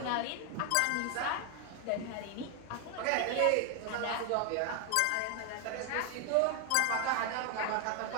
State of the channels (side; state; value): both; different; correlation 0.01